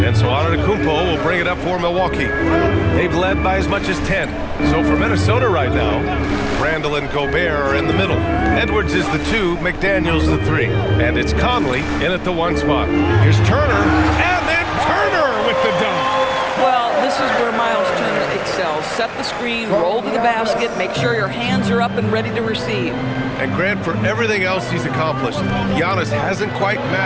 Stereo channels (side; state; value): both; identical; correlation 1.00